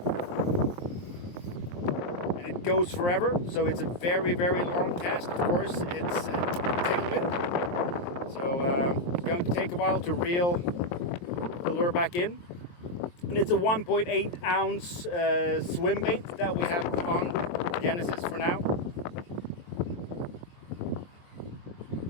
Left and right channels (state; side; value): late; right; 23 ms